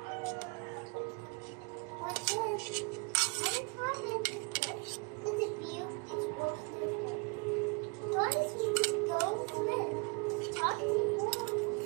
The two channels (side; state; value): left; quieter; 32.1 dB